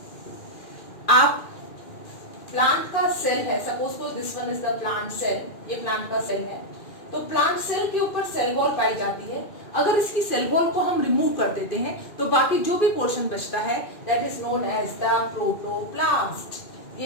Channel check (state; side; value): late; right; 2.4 ms